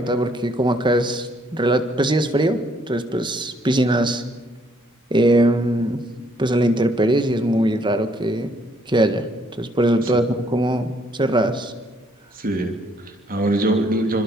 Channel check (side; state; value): both; normal; correlation 0.68